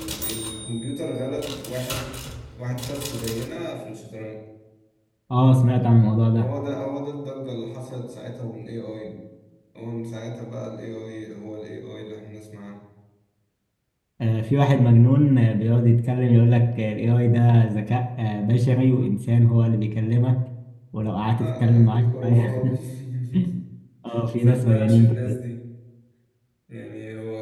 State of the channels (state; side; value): identical; both; correlation 1.00